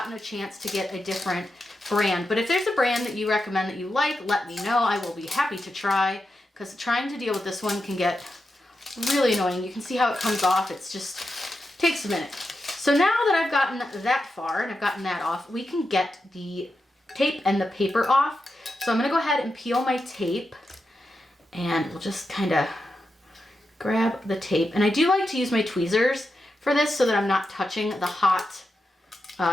a chance to get a different brand. But if there's a brand that you recommend that you like, let me know. I will be happy to try, because trying to deal with this one can get really annoying. You can see how it comes off. It's just takes a minute. So now that I've gotten that far and I've gotten that off, we can get the tape and the paper off. So I'm going to go ahead and peel my tape, and we'll just kind of grab the tape. And I do like to use my tweezers for this so that I'm not touching the hot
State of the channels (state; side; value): normal; both; correlation 0.88